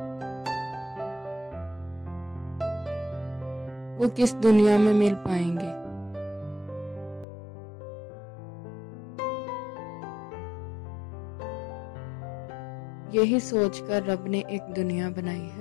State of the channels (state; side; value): drops out; right; at 7.2 s